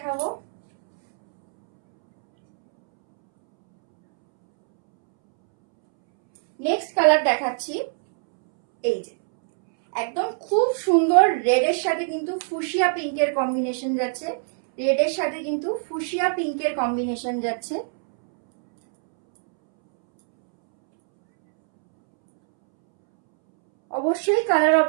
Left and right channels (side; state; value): left; silent; 64 dB below the other